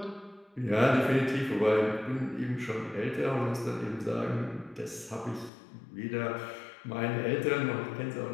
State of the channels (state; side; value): drops out; right; at 5.5 s